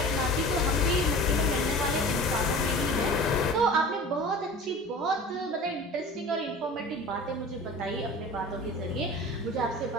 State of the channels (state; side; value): normal; both; correlation 0.38